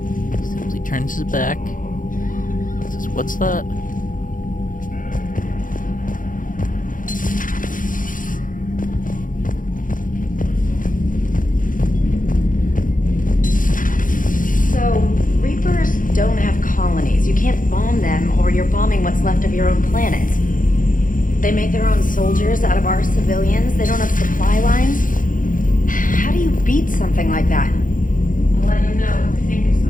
Simply turns his back. Says, what's that? So, Reapers don't have colonies. You can't bomb them, or you're bombing what's left of your own planet. They make their own soldiers out of our civilians. They don't have supply lines. How do you beat something like that? I'll let you know if I think of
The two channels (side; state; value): right; late; 0.39 ms